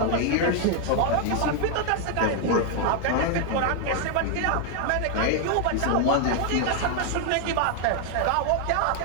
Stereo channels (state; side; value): different; both; correlation 0.00